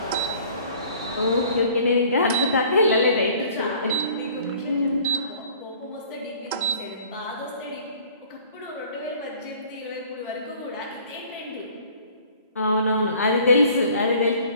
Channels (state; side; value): inverted; both; correlation -0.52